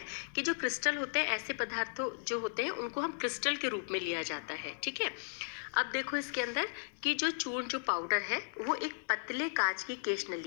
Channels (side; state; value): right; silent; digital silence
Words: कि जो क्रिस्टल होते हैं, ऐसे पदार्थों जो होते हैं उनको हम क्रिस्टल के रूप में लिया जाता है, ठीक है। अब देखो इसके अंदर कि जो चूर्ण, जो पाउडर है वो एक पतले कांच की केश